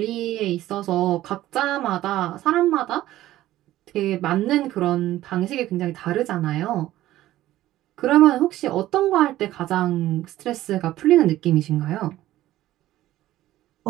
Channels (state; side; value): quieter; left; 14.8 dB